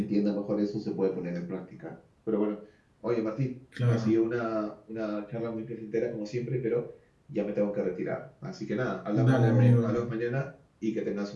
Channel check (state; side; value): identical; both; correlation 1.00